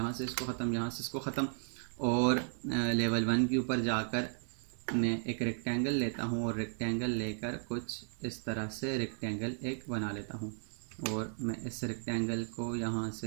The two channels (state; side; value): silent; left; 54 dB below the other